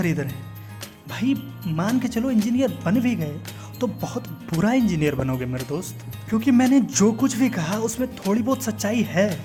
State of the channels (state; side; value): identical; both; correlation 1.00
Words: रहे हैं। भाई मान के चलो इंजीनियर बन भी गए तो बहुत बुरा इंजीनियर बनोगे मेरे दोस्त, क्योंकि मैंने जो कुछ भी कहा उसमें थोड़ी बहुत सच्चाई है।